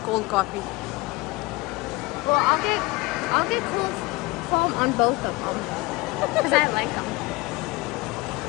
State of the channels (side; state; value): right; quieter; 23.0 dB